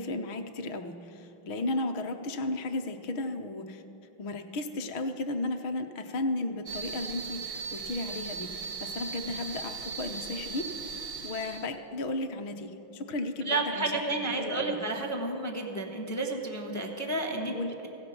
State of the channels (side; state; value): right; late; 5.6 ms